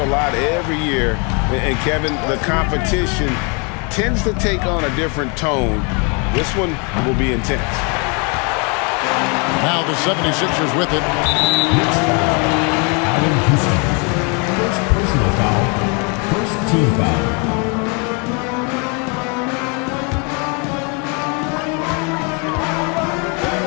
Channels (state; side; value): quieter; right; 33.9 dB